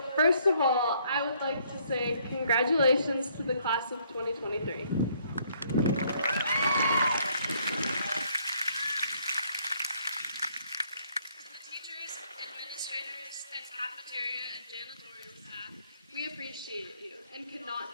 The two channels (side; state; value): both; inverted; correlation -0.67